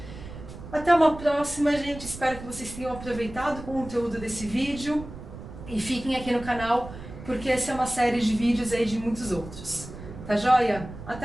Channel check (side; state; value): right; noise; rumble, 13 dB below the sound